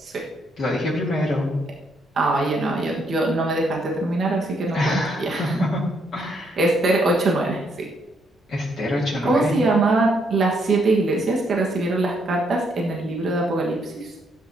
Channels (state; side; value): normal; both; correlation 0.73